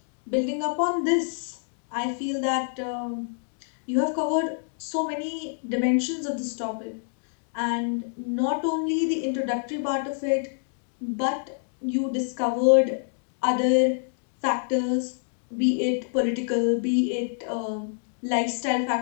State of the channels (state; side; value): silent; right; digital silence